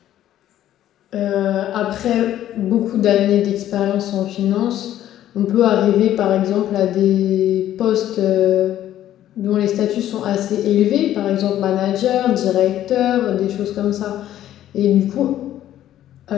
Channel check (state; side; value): quieter; right; 12.3 dB